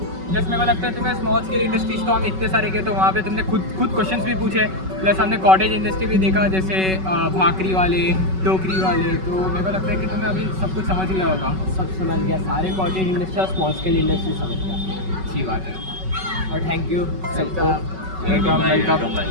प्लस मेरे को लगता है तुम्हें स्मॉल स्केल इंडस्ट्रीज तो हम इतने सारे गए तो वहाँ पे तुमने खुद क्वेश्चंस भी पूछे, प्लस हमने कॉटेज इंडस्ट्री भी देखा, जैसे भाकरी वाले, टोकरी वाले। तो मेरे को लगता है कि तुम्हें अभी सब कुछ समझ गया होगा। सब समझ गया, सारे कॉटेज इंडस्ट्री और स्मॉल स्केल इंडस्ट्री समझ गया। अच्छी बात है और थैंक यू सबको। वेलकम।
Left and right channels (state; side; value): late; left; 5.3 ms